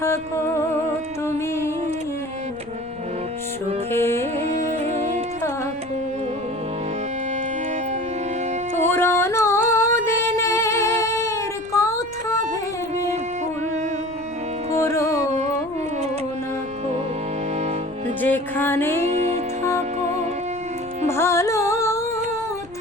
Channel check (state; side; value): noise; left; rumble, 22 dB below the sound